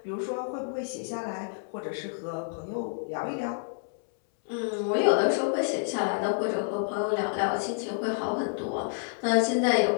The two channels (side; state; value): right; silent; 59 dB below the other